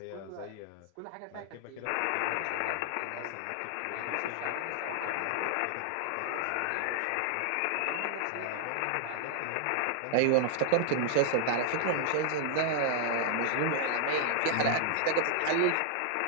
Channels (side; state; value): both; different; correlation 0.00